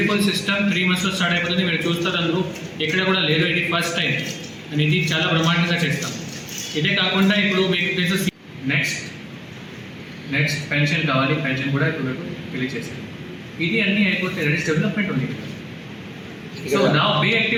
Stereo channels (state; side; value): identical; both; correlation 1.00